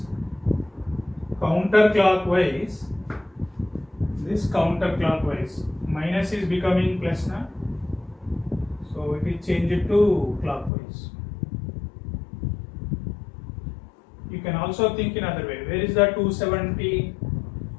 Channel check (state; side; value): drops out; right; at 10.7 s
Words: counterclockwise, minus is becoming plus now. So it is changed to clockwise. You can also think in other way. Where is the 270?